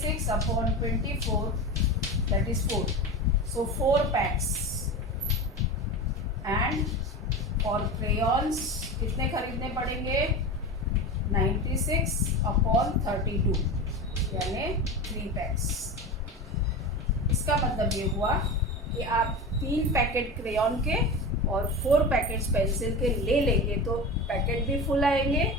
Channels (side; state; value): both; normal; correlation 0.27